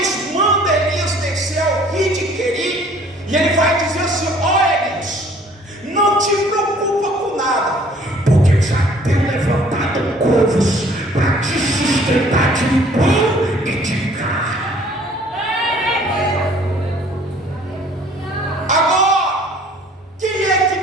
manda Elias descer ao rio de Querim, e ele vai dizer assim: ó Elias, não te preocupa com nada, porque eu já tenho levantado corvos para te sustentar de pão e de carne. Agora, quem é que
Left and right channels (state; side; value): normal; both; correlation 0.56